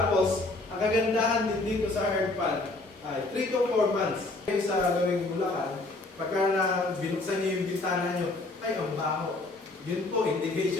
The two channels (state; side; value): quieter; right; 3.0 dB